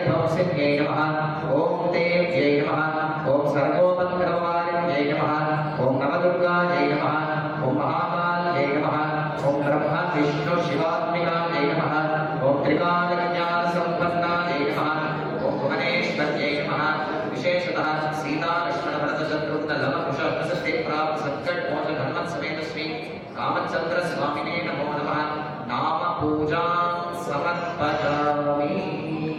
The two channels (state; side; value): identical; both; correlation 1.00